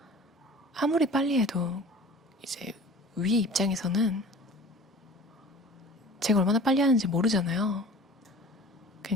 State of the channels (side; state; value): both; normal; correlation 0.43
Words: 아무리 빨리 해도 이제 위 입장에서는 제가 얼마나 빨리 하는지 모르잖아요.